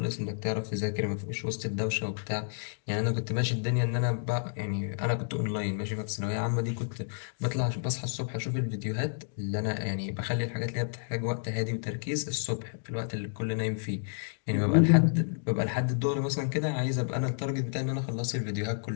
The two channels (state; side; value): silent; right; digital silence